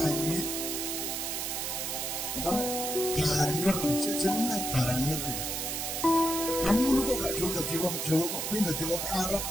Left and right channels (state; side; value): noise; right; hiss, 2 dB below the sound